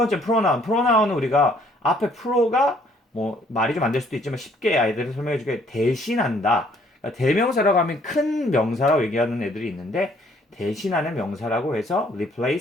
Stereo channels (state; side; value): normal; both; correlation 0.63